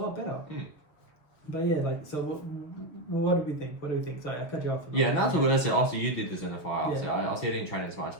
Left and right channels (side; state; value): right; late; 6.6 ms